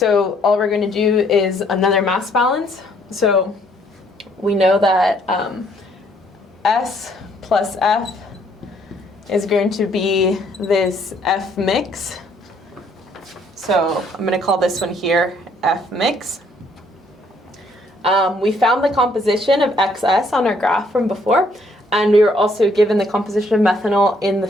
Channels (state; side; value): normal; both; correlation 0.66